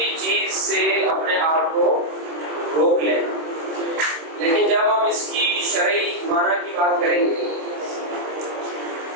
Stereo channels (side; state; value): left; late; 26 ms